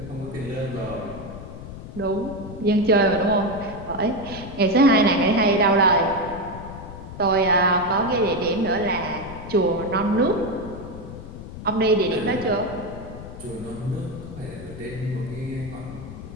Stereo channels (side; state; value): left; noise; rumble, 12 dB below the sound